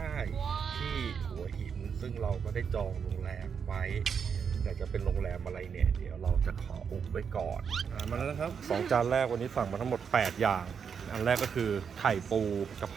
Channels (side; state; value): left; quieter; 6.7 dB